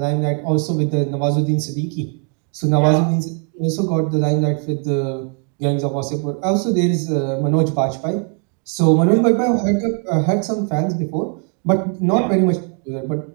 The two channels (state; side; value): quieter; left; 39.7 dB